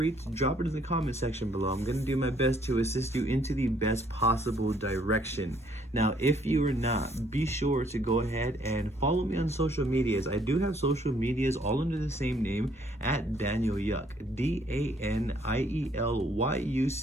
to drop it in the comment section below. I'm going to do my best to assist you into the best possible direction. Now, if you are not, be sure to go ahead and follow me on social medias. I do have social medias all under the same name, at Daniel Yuck, DANIELYUCK.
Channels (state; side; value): normal; both; correlation 0.65